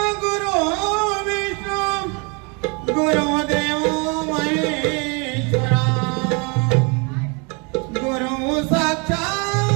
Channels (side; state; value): left; quieter; 32.3 dB